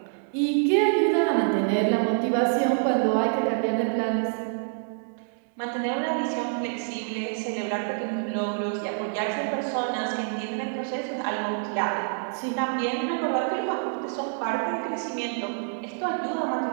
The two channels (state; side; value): silent; left; 60 dB below the other